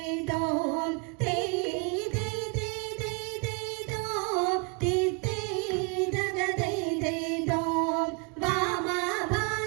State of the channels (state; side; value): quieter; left; 32.8 dB